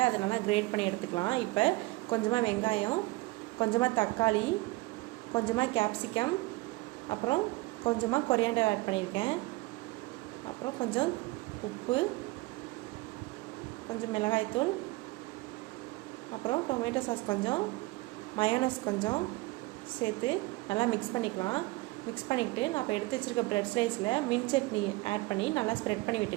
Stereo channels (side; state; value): left; quieter; 21.6 dB